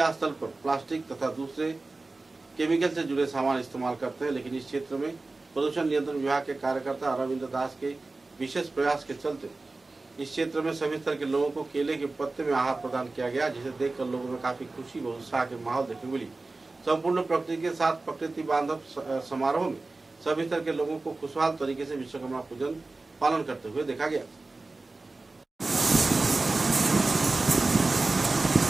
स्थल पर प्लास्टिक तथा दूसरे केमिकल से जुड़े सामान इस्तेमाल करते हैं, लेकिन इस क्षेत्र में प्रदूषण नियंत्रण विभाग के कार्यकर्ता अरविंद दास के विशेष प्रयास के चलते इस क्षेत्र में सभी स्तर के लोगों को केले के पत्ते में आहार प्रदान किया गया, जिसे देखकर लोगों में काफी खुशी व उत्साह के माहौल देखने मिली। संपूर्ण प्रकृति के साथ प्रकृति बांधव समारोह में सभी स्तर के लोगों को खुशहाल तरीके से विश्वकर्मा पूजन पालन करते हुए देखा गया।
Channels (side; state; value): left; quieter; 3.4 dB